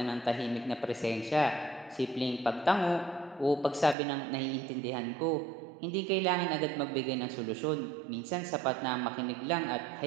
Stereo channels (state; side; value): drops out; left; at 4.0 s